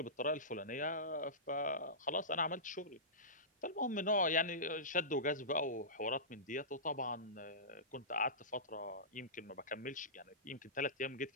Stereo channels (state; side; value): normal; both; correlation -0.19